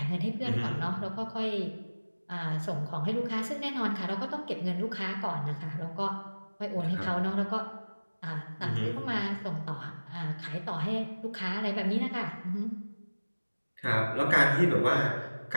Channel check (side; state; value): both; inverted; correlation -1.00